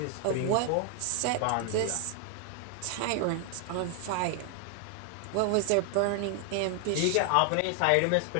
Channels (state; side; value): different; both; correlation 0.00